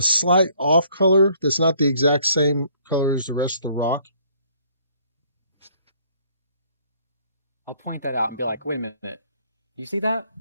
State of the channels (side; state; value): both; inverted; correlation -0.62